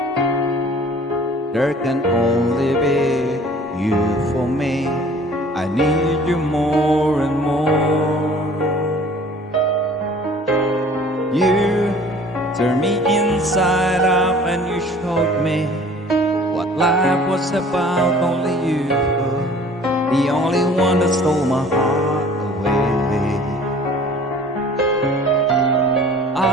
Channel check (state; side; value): normal; both; correlation 0.49